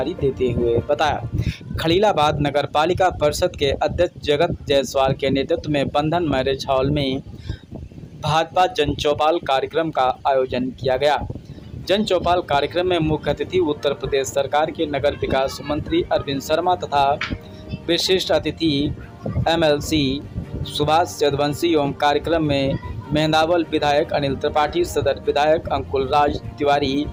देते हुए बताया, खलीलाबाद नगर पालिका परिषद के अध्यक्ष जगत जायसवाल के नेतृत्व में बंधन मैरिज हॉल में भाजपा जन चौपाल कार्यक्रम का आयोजन किया गया। जन चौपाल कार्यक्रम में मुख्य अतिथि उत्तर प्रदेश सरकार के नगर विकास मंत्री अरविंद शर्मा तथा विशिष्ट अतिथि MLC सुभाष यदुवंशी एवं कार्यक्रम में मेहंदावल विधायक अनिल त्रिपाठी, सदर विधायक अंकुल राज तिवारी,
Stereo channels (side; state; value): both; identical; correlation 1.00